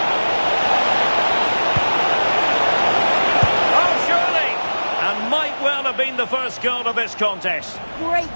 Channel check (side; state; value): both; inverted; correlation -1.00